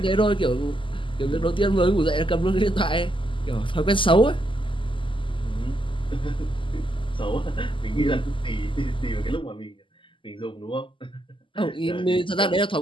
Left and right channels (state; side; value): late; right; 0.25 ms